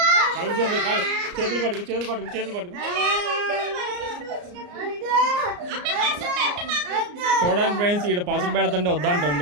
చేతులు పట్టుకు. చూడండి ఫ్రెండ్స్, ఈడ పసుపు పెడుతుంటే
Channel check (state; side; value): late; left; 34 ms